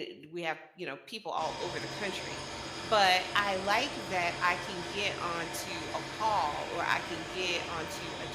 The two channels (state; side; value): identical; both; correlation 1.00